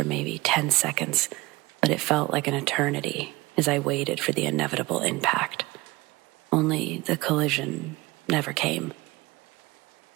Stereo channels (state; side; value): quieter; left; 21.7 dB